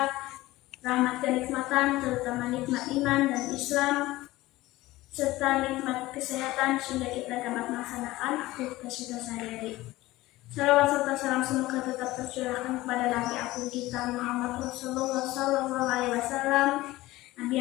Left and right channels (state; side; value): quieter; right; 18.1 dB